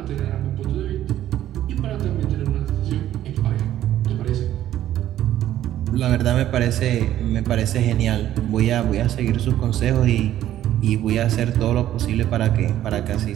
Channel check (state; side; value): quieter; left; 12.4 dB